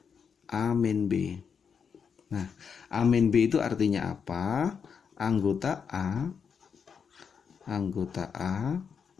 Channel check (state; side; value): quieter; right; 6.5 dB